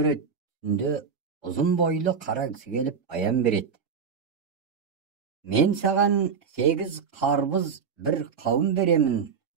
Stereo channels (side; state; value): left; quieter; 6.1 dB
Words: Түнде ұзын бойлы қара кісі келіп аян береді. Мен саған 8 қарбыз бір қауын беремін,